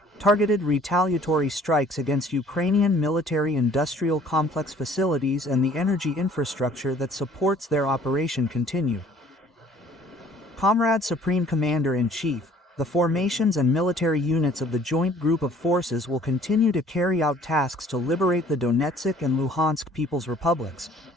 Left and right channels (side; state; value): both; normal; correlation 0.55